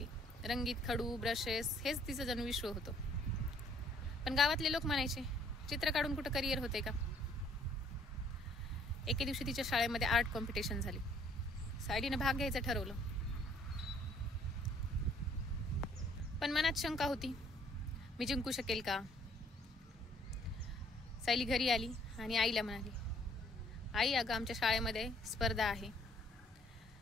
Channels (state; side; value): normal; both; correlation 0.62